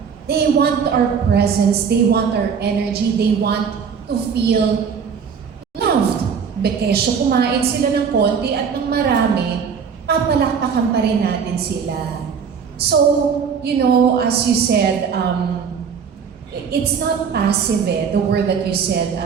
They want our presence, they want our energy, they want to feel loved. Bekesyo kumain sila ng konti at ng marami, papalakpakan pa rin natin sila. So, you know, as you said, it's not passive the word that you said.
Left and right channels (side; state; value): left; quieter; 6.5 dB